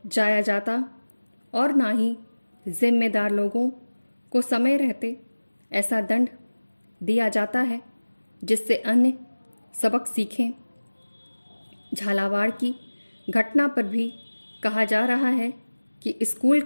जाया जाता और ना ही जिम्मेदार लोगों को समय रहते ऐसा दंड दिया जाता है जिससे अन्य सबक सीखें। झालावाड़ की घटना पर भी कहा जा रहा है कि स्कूल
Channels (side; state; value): both; inverted; correlation -1.00